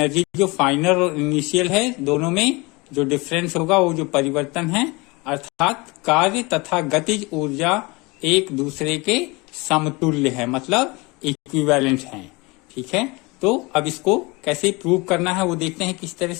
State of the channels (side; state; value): right; quieter; 25.3 dB